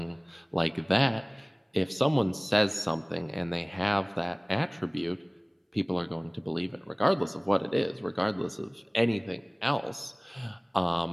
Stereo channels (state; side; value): identical; both; correlation 1.00